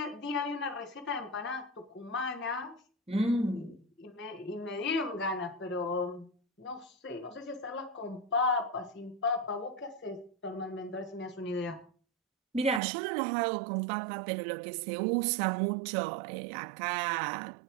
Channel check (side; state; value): left; drops out; at 12.8 s